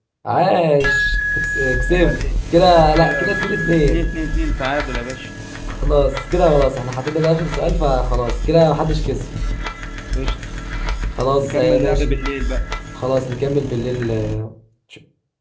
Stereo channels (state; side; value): identical; both; correlation 1.00